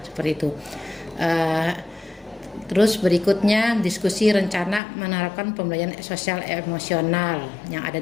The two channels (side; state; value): right; drops out; at 4.8 s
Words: seperti itu. Terus berikutnya diskusi rencana menerapkan pembelajaran sosial emosional yang ada